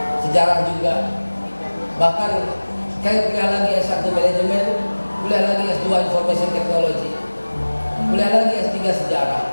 sejarah juga, bahkan saya kuliah lagi S1 manajemen, kuliah lagi S2 information technology, kuliah lagi S3 sejarah,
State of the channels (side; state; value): both; inverted; correlation -1.00